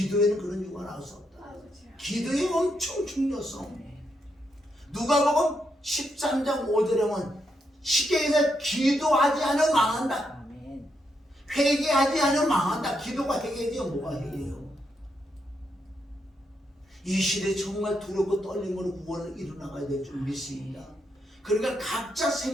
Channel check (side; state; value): both; normal; correlation 0.80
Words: 그런 유가 나올 수 없다. 기도의 엄청 중요성. 누가복음 13장 5절에 보면 쉽게 얘기해서 기도하지 않으면 망한다. 회개하지 않으면 망한다. 기도가 회개지요. 뭐가 회개예요? 이 시대에 정말 두렵고 떨림으로 구원을 이루나가야 될 줄 믿습니다. 그러니까 각자